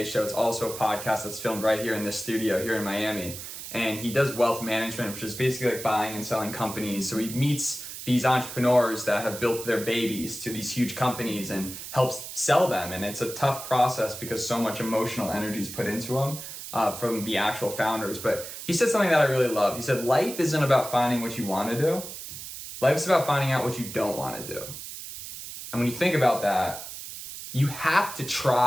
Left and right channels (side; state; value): right; noise; hiss, 10 dB below the sound